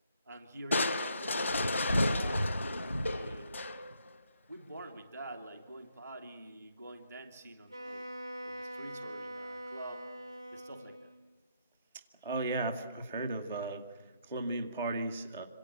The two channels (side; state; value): both; inverted; correlation -0.74